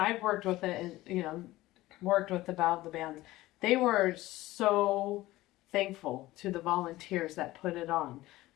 worked with it, and worked with about the bands, they were so thankful to the volunteers that put it on.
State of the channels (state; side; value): quieter; right; 17.5 dB